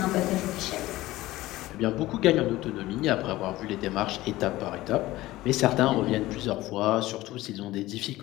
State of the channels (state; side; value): quieter; right; 17.3 dB